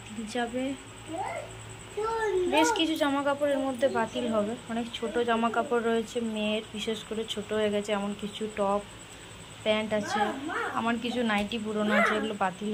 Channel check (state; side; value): identical; both; correlation 1.00